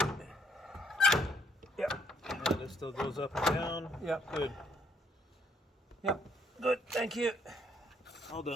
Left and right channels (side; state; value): both; normal; correlation 0.68